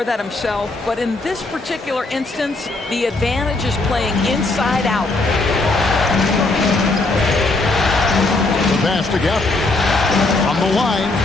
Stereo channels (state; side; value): quieter; right; 3.2 dB